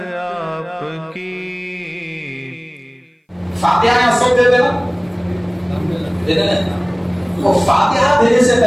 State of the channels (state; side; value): identical; both; correlation 1.00